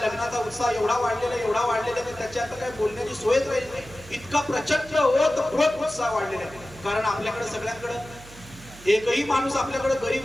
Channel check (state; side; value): noise; right; hum, 19 dB below the sound